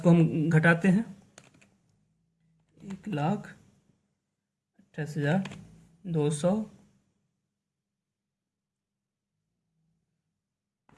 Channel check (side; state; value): both; identical; correlation 1.00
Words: हम घटाते हैं, 1,28,200